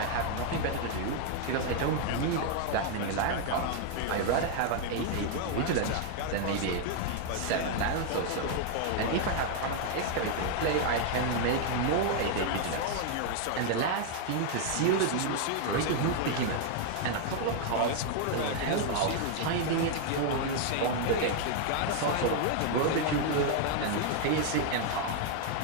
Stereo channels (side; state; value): both; different; correlation 0.00